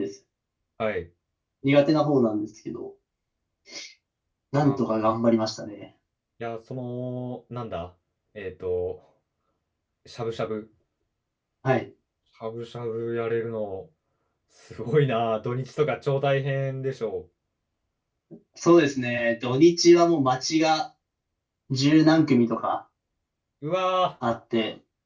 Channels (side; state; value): both; identical; correlation 1.00